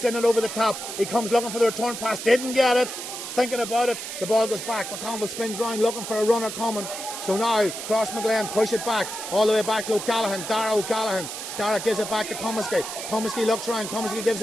it over the top. He comes looking for the return pass, didn't get it. He's thinking about it. The ball goes back. McConville spins round, looking for a runner coming. So now Crossmaglen push it back, all the way back to O'Callaghan. Dara O'Callaghan. Dara gives it back to Comiskey. Comiskey looks round. Comiskey gives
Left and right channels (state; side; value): noise; right; hiss, 8 dB below the sound